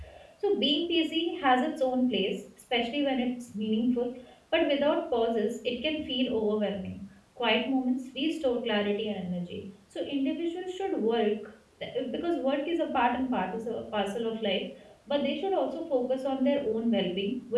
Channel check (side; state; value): both; identical; correlation 1.00